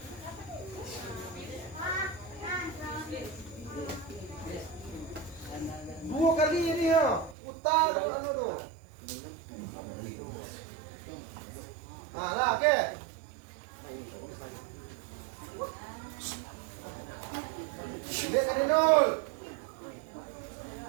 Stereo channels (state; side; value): drops out; left; at 7.4 s